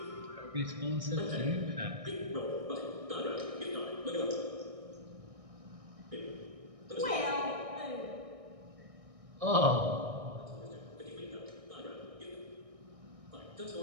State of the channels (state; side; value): late; left; 1.6 ms